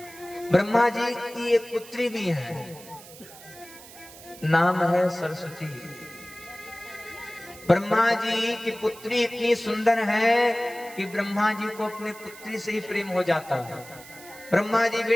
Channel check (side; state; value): right; noise; hiss, 18 dB below the sound